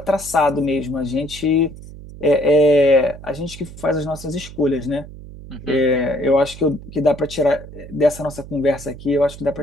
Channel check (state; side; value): noise; right; hum, 15 dB below the sound